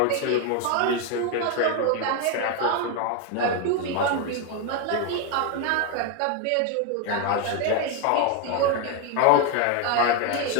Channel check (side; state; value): both; different; correlation 0.01